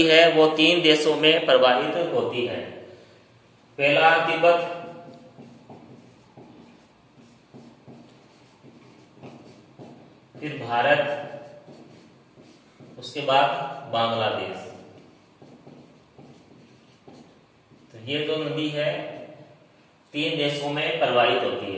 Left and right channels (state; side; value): identical; both; correlation 1.00